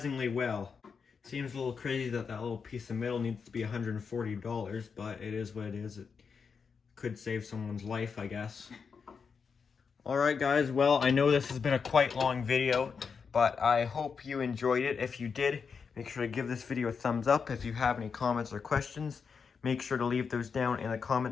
well. Seems a little crazy that that little piece of metal needs to be $140, but it is what it is. It could save someone's life, I guess. Alright guys, well, I know this has been a quite long video, but I hope you enjoyed it. If you did, make sure to give this video a thumbs up. If you have any comments or questions, make sure to leave those down in the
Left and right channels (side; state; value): right; quieter; 5.8 dB